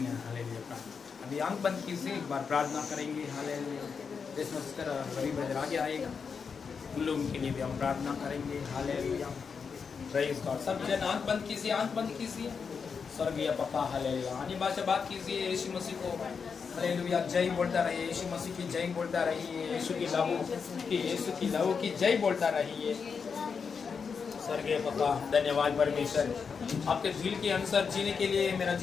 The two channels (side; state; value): right; quieter; 5.8 dB